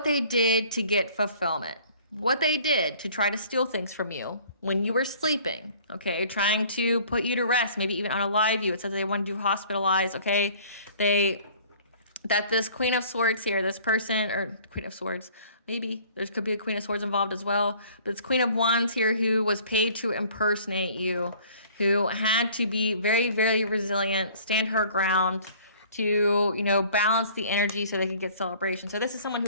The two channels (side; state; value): both; inverted; correlation -0.53